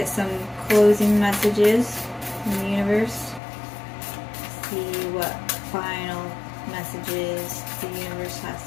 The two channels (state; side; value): drops out; right; at 3.4 s